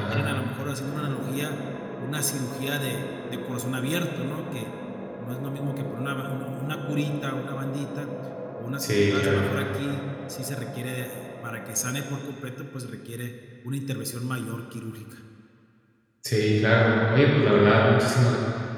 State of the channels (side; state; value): both; identical; correlation 1.00